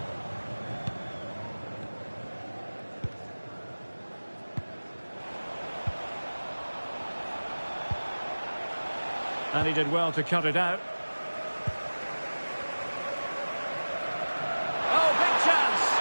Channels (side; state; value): both; inverted; correlation -1.00